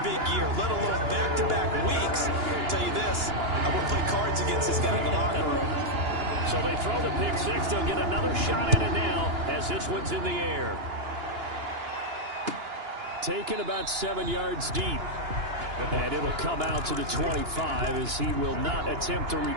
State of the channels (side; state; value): left; late; 2.9 ms